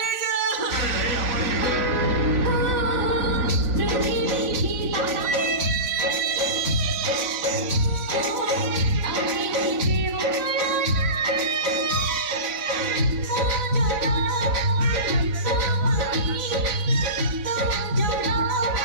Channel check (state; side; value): late; left; 4.0 ms